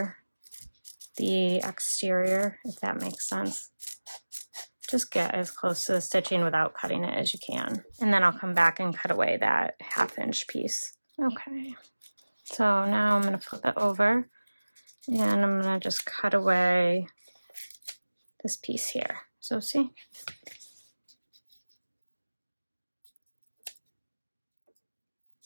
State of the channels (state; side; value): inverted; both; correlation -1.00